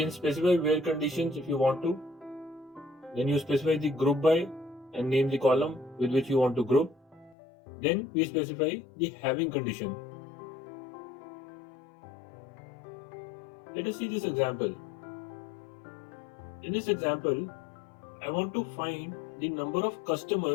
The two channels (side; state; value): right; drops out; at 7.4 s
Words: specify where conditions if you want to. Then you specify the group by and name the column with which you want to group. Then we specify the having condition. Let us see this example. In this example, I want to find the number of